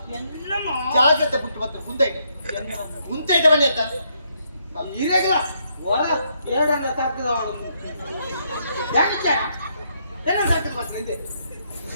ఎన్నమ్మ జాగ్రత్త పుట్టుబత్తు ముందైతే ముందైతే బని ఎత్త ఈరేగల వర ఏడంగా తక్కువ వాడు యాకిచ్చారా ఏడ తక్కువ బస్సు ಇದೆ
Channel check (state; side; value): inverted; both; correlation -0.75